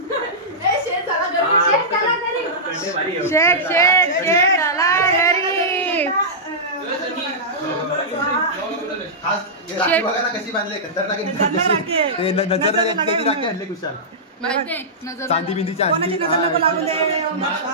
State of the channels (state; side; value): normal; both; correlation -0.14